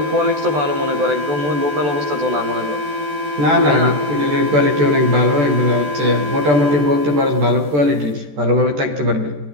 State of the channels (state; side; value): late; left; 14 ms